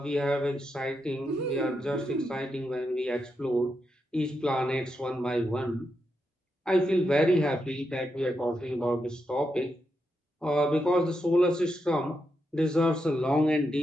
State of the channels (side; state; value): both; normal; correlation 0.84